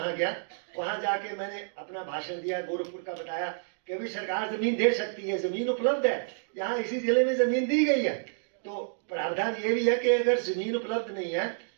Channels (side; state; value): left; silent; digital silence